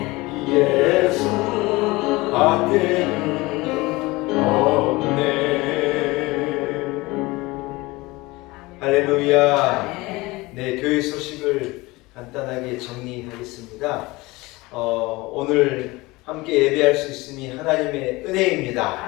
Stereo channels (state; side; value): quieter; right; 21.9 dB